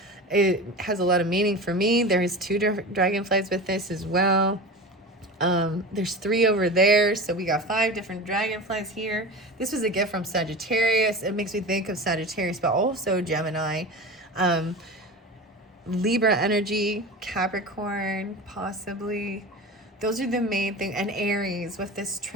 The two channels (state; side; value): normal; both; correlation 0.30